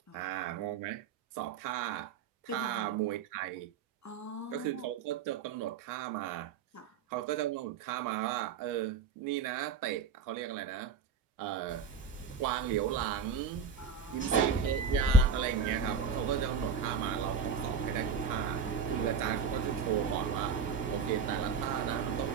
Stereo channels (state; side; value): quieter; left; 5.9 dB